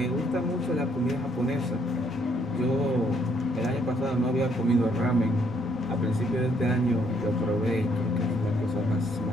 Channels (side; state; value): both; normal; correlation 0.68